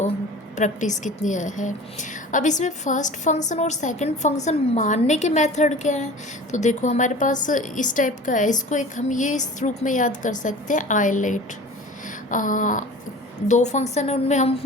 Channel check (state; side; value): normal; both; correlation 0.40